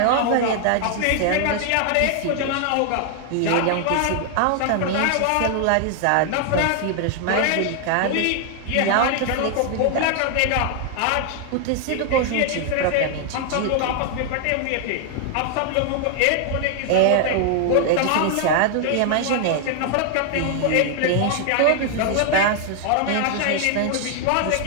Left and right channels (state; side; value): different; both; correlation 0.00